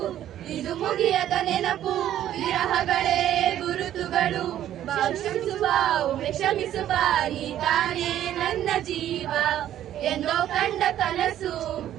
ಇದು ಮುಗಿಯದ ನೆನಪು, ವಿರಹಗಳೇ ಗುರುತುಗಳು. ಕ್ಷಮಿಸುವ ಒಮ್ಮೆ ಕ್ಷಮಿಸುವ, ನೀ ತಾನೇ ನನ್ನ ಜೀವ. ಎಂದೋ ಕಂಡ ಕನಸು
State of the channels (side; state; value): left; quieter; 11.8 dB